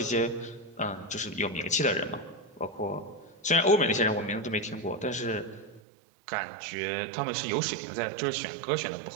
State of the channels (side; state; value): left; drops out; at 5.8 s